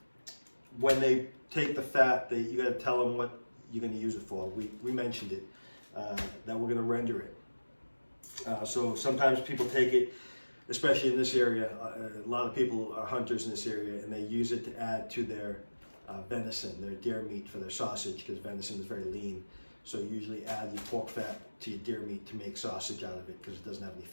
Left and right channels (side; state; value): both; inverted; correlation -1.00